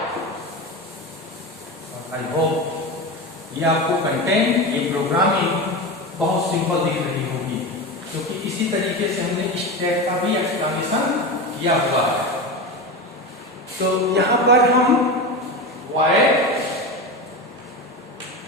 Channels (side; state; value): both; normal; correlation 0.22